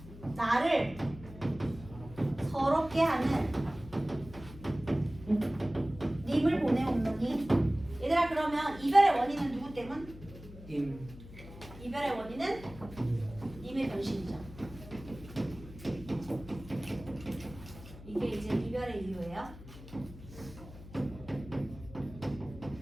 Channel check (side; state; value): left; noise; hum, 16 dB below the sound